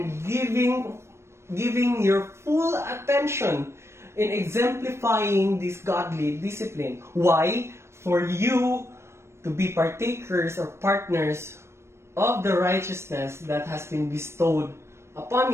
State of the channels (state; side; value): late; left; 0.13 ms